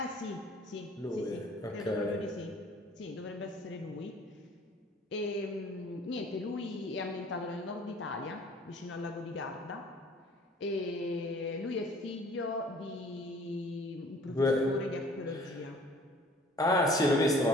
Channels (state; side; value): normal; both; correlation 0.52